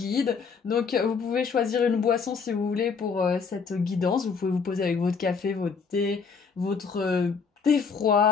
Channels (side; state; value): right; quieter; 5.5 dB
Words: Donc vous pouvez choisir une boisson si vous voulez pour cette guidance. Vous pouvez vous poser avec votre café, votre thé, votre thé